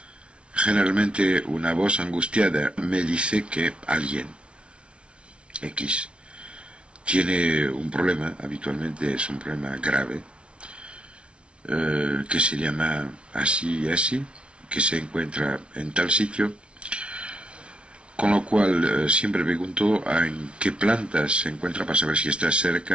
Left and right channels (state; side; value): late; left; 0.059 ms